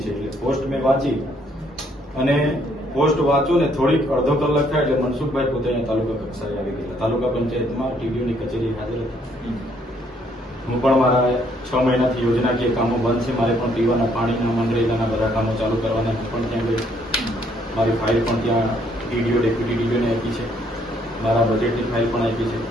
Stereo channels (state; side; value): normal; both; correlation 0.67